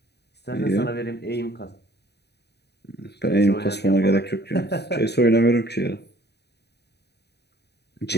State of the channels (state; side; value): late; right; 0.48 ms